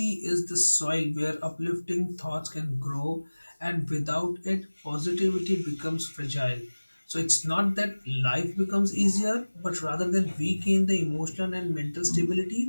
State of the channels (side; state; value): both; inverted; correlation -1.00